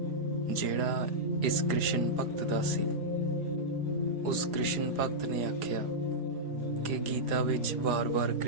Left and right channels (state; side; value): late; left; 4.9 ms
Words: ਜਿਹੜਾ ਇਸ ਕ੍ਰਿਸ਼ਨ ਭਗਤ ਦਾ ਸੀ। ਉਸ ਕ੍ਰਿਸ਼ਨ ਭਗਤ ਨੇ ਆਖਿਆ ਕਿ ਗੀਤਾ ਵਿੱਚ ਵਾਰ-ਵਾਰ